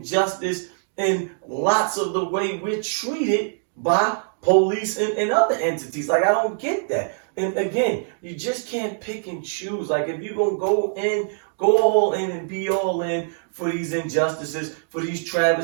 in lots of the way we're treated by police and other entities? Like, I don't get that. And again, you just can't pick and choose. Like, if you're going to go all in and be all in for these injustices, for these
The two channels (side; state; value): left; silent; digital silence